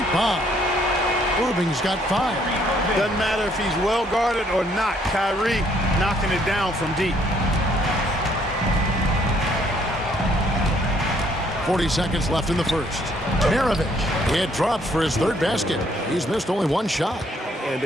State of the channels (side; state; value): both; normal; correlation 0.66